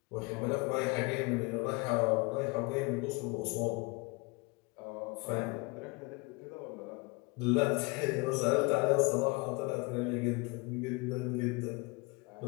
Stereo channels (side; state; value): right; quieter; 27.2 dB